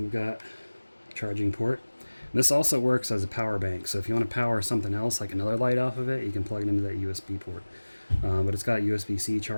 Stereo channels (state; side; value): inverted; both; correlation -1.00